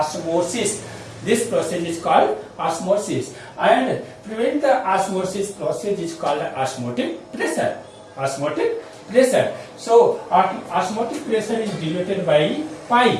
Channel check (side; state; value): both; identical; correlation 1.00